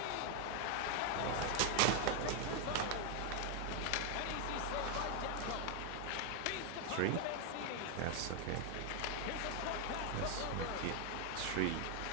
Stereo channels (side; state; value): both; different; correlation 0.00